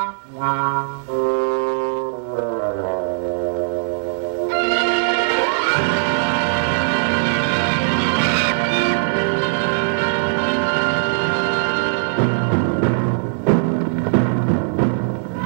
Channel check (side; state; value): left; silent; digital silence